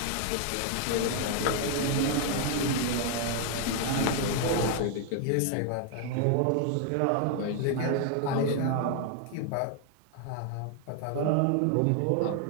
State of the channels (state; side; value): different; both; correlation 0.00